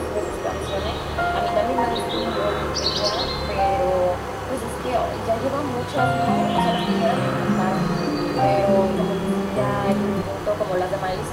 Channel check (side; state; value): both; identical; correlation 1.00